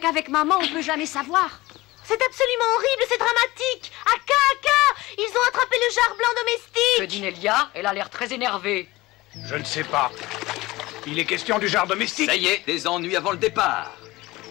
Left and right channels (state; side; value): quieter; right; 19.9 dB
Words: maman on peut jamais savoir. C'est absolument horrible, c'est dramatique! Aka! Ils ont attrapé le jar blanc domestique! Que dit Nelia? Elle a l'air très énervée. Je ne sais pas. Il est question du jar domestique. Ça y est, des ennuis avant le départ.